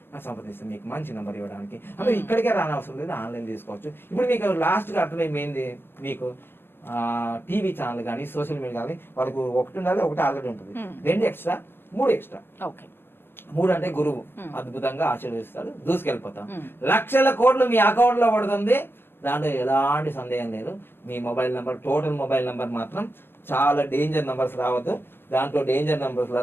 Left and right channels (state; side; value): late; right; 0.10 ms